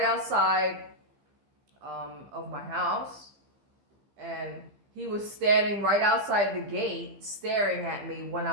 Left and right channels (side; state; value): left; late; 15 ms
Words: outside of my house, and he was standing right outside the gate staring at me when